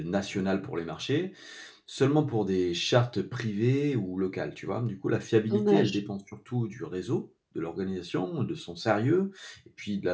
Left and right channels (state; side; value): identical; both; correlation 1.00